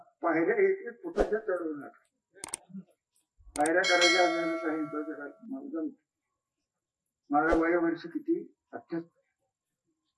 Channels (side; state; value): both; identical; correlation 1.00